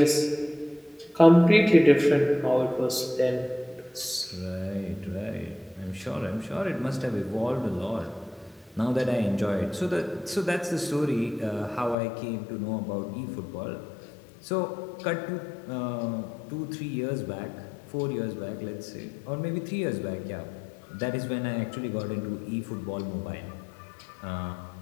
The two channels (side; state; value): right; drops out; at 12.0 s